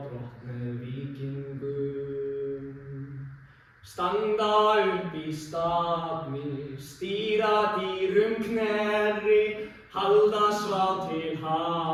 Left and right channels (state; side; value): identical; both; correlation 1.00